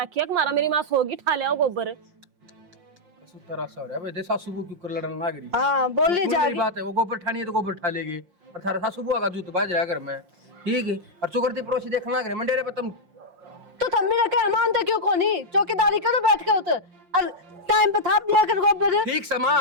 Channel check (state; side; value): late; left; 5.7 ms